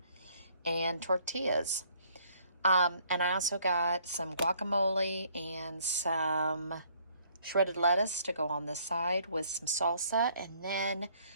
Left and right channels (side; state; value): both; inverted; correlation -0.63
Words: And tortillas. And I also got some guacamole and some shredded lettuce to go on the side with some salsa. And then